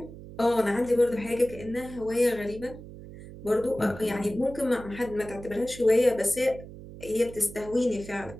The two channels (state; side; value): noise; right; hum, 15 dB below the sound